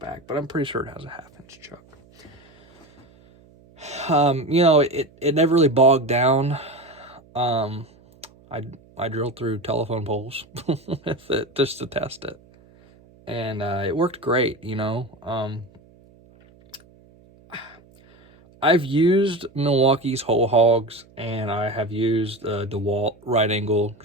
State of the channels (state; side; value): noise; right; hum, 27 dB below the sound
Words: but I'm pretty sure it has a 1/2-inch chuck. It never really bogged down. I drilled through telephone poles with it just to test it, and it worked great. I've used Milwaukee's whole hogs, and I have used DeWalt right angle